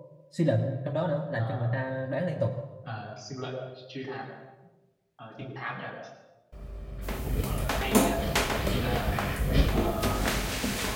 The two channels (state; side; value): identical; both; correlation 1.00